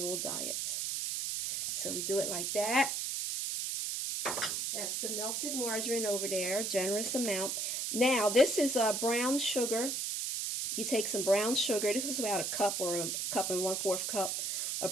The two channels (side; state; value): right; noise; hiss, 1 dB below the sound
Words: diets. So we do it like that. That's the melted margarine over there, generous amount. Now, this is brown sugar. You take some brown sugar. This is about a cup or a cup and 1/4 cup